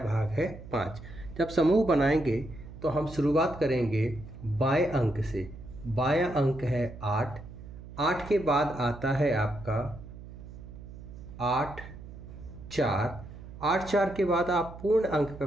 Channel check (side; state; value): right; noise; hum, 14 dB below the sound